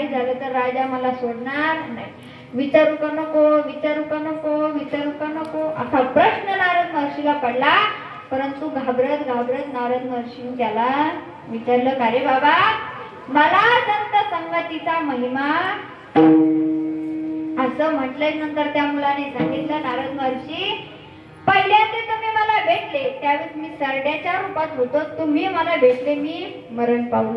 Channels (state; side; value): identical; both; correlation 1.00